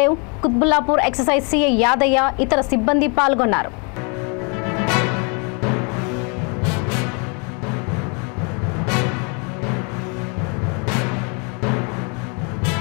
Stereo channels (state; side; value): quieter; right; 34.9 dB